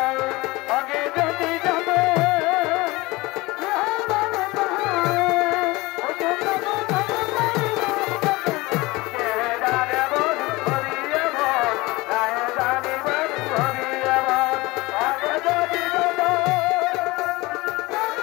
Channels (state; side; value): quieter; right; 21.9 dB